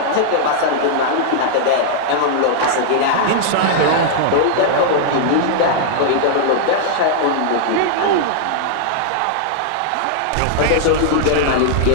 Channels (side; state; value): both; different; correlation -0.01